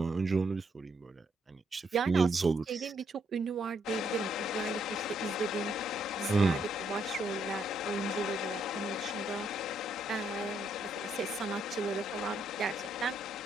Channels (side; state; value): both; normal; correlation 0.74